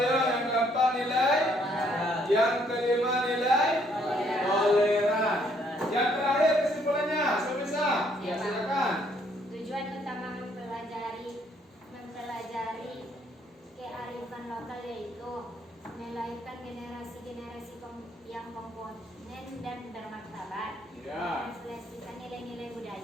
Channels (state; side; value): normal; both; correlation 0.67